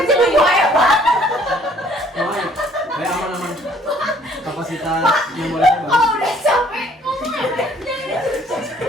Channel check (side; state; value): both; normal; correlation 0.60